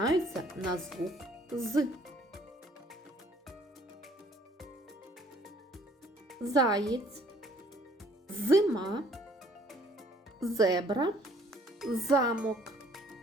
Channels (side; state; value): both; normal; correlation 0.60